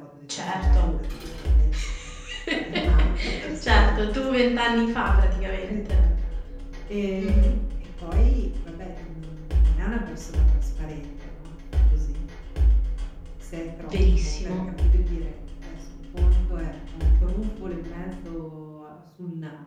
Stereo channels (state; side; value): identical; both; correlation 1.00